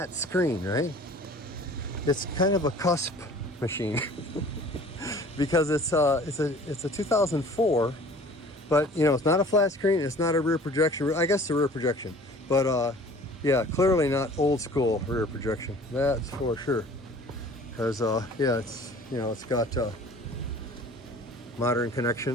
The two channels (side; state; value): both; normal; correlation 0.48